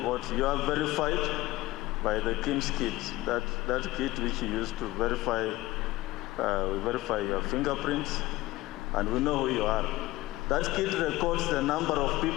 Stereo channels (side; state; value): right; quieter; 18.2 dB